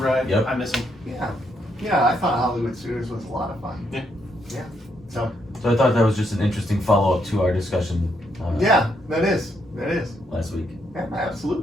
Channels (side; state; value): both; normal; correlation 0.76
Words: Yep. I miss them. Yeah, I thought Hollywood Studios was a lot of fun. Yeah. So I thought that was just an interesting follow up to our discussion. yeah, that is Last week. Yeah,